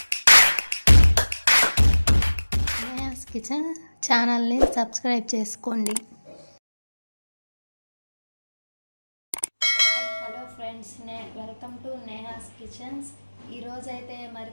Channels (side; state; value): both; inverted; correlation -1.00